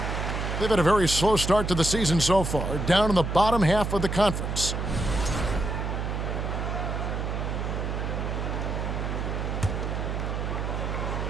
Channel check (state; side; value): noise; right; hum, 2 dB below the sound